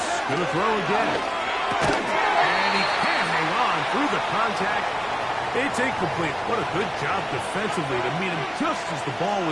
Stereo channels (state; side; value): identical; both; correlation 1.00